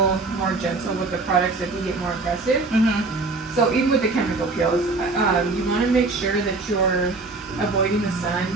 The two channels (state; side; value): quieter; left; 3.6 dB